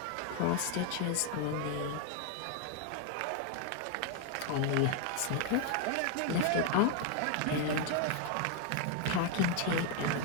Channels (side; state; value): both; different; correlation 0.00